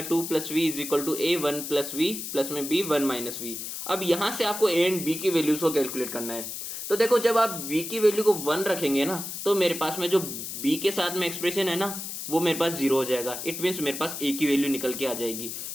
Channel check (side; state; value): left; noise; hiss, 7 dB below the sound